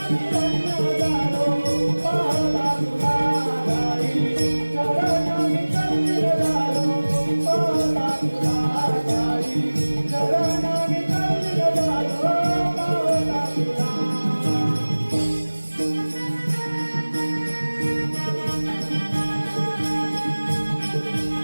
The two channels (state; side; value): inverted; both; correlation -1.00